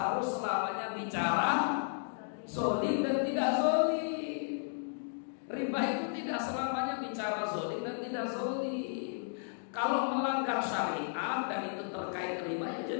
selamanya bicara zolim dan tidak zolim. Riba itu tidak selamanya bicara zolim dan tidak zolim. Kalau melanggar syariat dan itu terkait riba ya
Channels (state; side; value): silent; right; digital silence